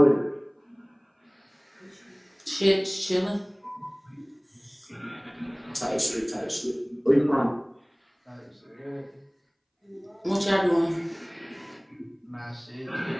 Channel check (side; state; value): both; identical; correlation 1.00